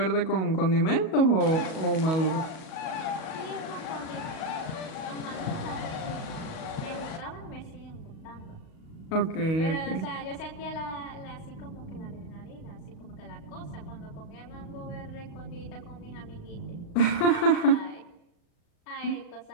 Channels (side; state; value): right; late; 37 ms